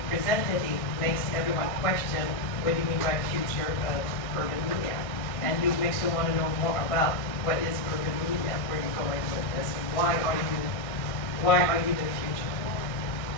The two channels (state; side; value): late; right; 1.6 ms